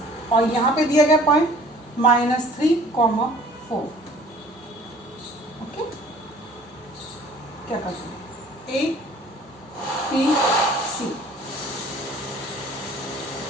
और यहाँ पे दिया गया पॉइंट -3, 4। ओके, क्या करते हैं, A, B, C,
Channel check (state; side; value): normal; both; correlation 0.51